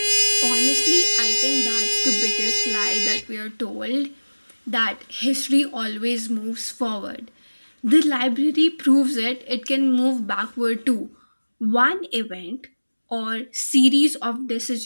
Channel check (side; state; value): both; inverted; correlation -1.00